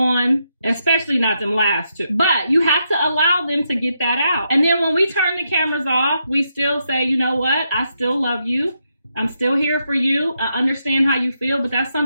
especially not them last two. But you have to allow them to get that out. And then when we turn the cameras off, we still say, you know what? I still love you. I'm still here for you. I understand how you feel, but that's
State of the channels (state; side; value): inverted; both; correlation -0.81